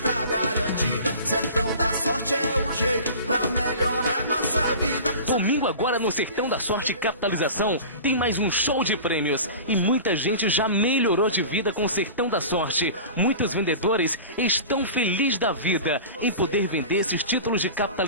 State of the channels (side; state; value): both; inverted; correlation -0.37